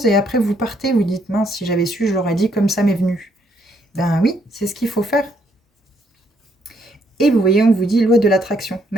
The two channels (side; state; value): both; normal; correlation 0.72